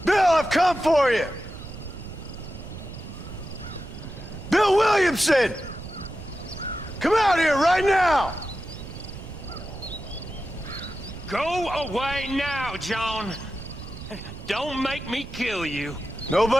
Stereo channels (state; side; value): noise; right; rumble, 12 dB below the sound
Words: Bill, I've come for you! Bill Williamson! Come out here right now! Go away now, John. Don't make me kill you.